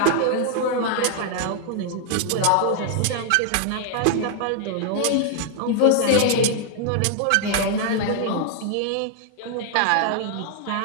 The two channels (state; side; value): different; both; correlation 0.00